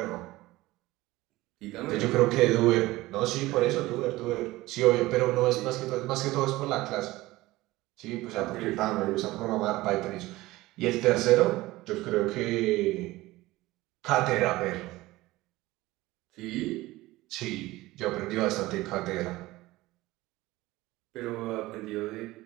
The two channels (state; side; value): quieter; left; 18.7 dB